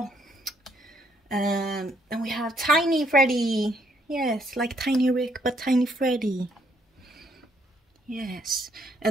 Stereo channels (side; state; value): both; normal; correlation 0.70